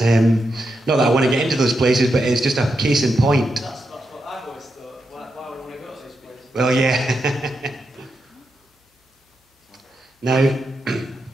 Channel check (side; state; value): both; normal; correlation 0.85